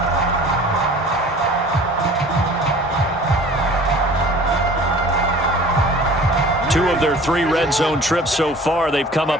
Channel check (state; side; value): normal; both; correlation 0.46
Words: Two of their 3 red zone trips so far they've come